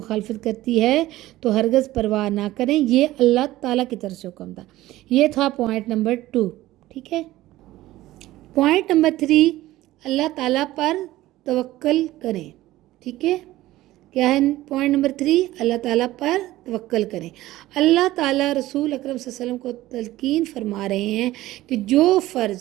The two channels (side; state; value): left; quieter; 16.3 dB